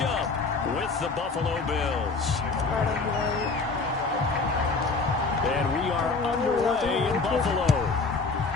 up with the Buffalo Bills. And we are underway in Buffalo.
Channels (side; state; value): right; quieter; 4.1 dB